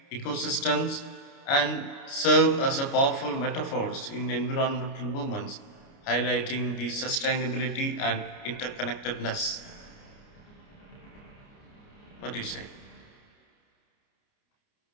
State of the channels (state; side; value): late; right; 29 ms